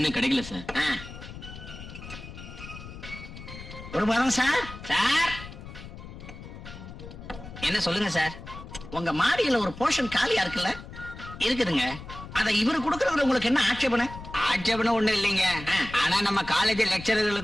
கிடைக்கல சார். குருபாதம் சார். சார் என்ன சொல்லுங்க சார். உங்க மாடியில ஒரு போர்ஷன் காலியா இருக்குல்ல? இருக்குதுங்க. அதை இவரு கொடுக்கறதுல உங்களுக்கு என்ன ஆட்சேபனை? ஆட்சேபனை ஒண்ணு இல்லைங்க. ஆனா நம்ம காலேஜ்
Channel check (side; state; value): left; noise; rumble, 13 dB below the sound